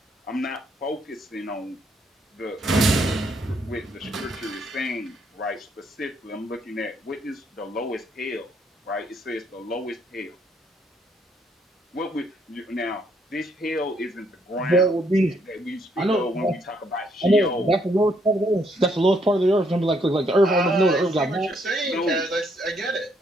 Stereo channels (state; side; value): normal; both; correlation 0.71